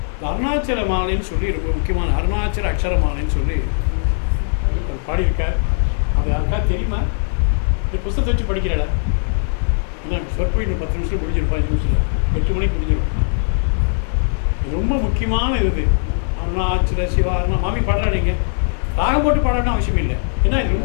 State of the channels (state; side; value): silent; right; 59 dB below the other